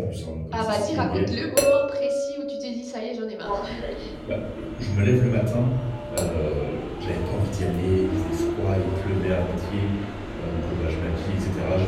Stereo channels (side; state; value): both; identical; correlation 1.00